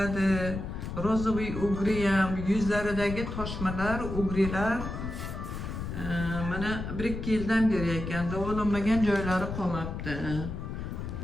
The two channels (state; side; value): noise; left; rumble, 6 dB below the sound